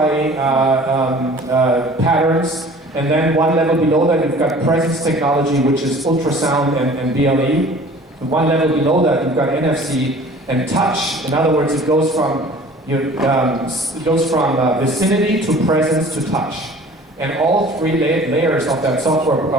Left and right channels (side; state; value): both; normal; correlation 0.47